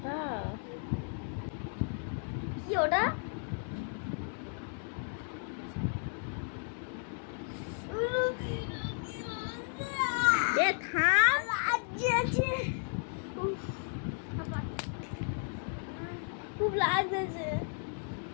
কি? ওটা থাম, খুব লাগছে,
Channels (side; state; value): right; silent; 55 dB below the other